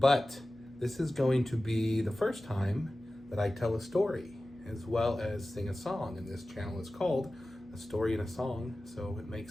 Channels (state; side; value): noise; left; hum, 28 dB below the sound